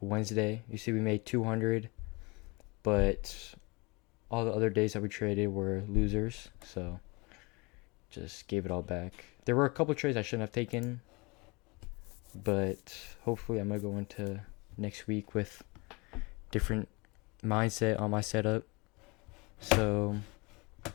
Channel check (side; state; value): right; quieter; 27.1 dB